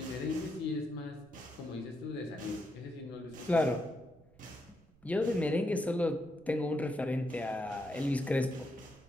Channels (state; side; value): noise; right; rumble, 27 dB below the sound